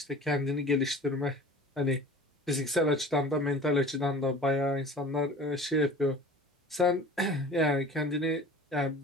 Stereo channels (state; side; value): normal; both; correlation 0.41